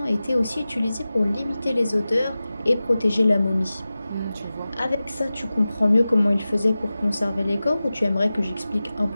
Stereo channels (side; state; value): both; inverted; correlation -0.96